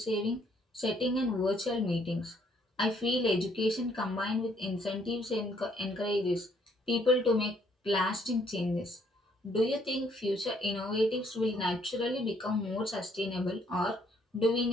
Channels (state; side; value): normal; both; correlation 0.67